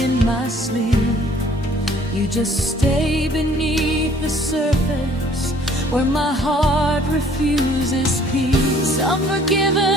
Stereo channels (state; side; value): normal; both; correlation 0.58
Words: my sleep. You just stay beneath the surface where my heart refuses peace. I'm